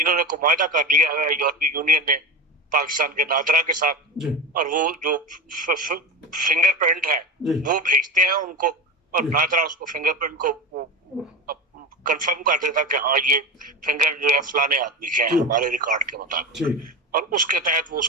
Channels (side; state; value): both; normal; correlation 0.22